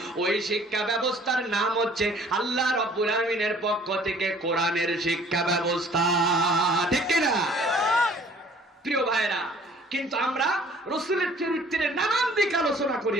ওই শিক্ষা ব্যবস্থার নাম হচ্ছে আল্লাহ রব্বুল আলামিনের পক্ষ থেকে কোরআনের শিক্ষা ব্যবস্থা, ঠিক কিনা? প্রিয় ভাইরা, কিন্তু আমরা রাসূলের চরিত্রের নানান দিক আলোচনা করি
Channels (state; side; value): normal; both; correlation 0.54